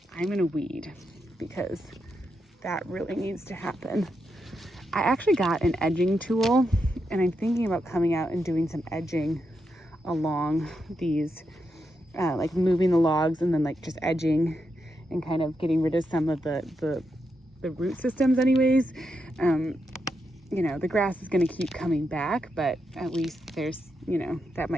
I'm gonna weed because that really needs to happen. I actually got an edging tool and I'm thinking about coming out and doing some edging along these, like moving the logs and then like just edging and kind of getting rid of some of the root systems anyways. You know, the grass is going to keep coming back, but at least there's, you know, that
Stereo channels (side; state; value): both; normal; correlation 0.84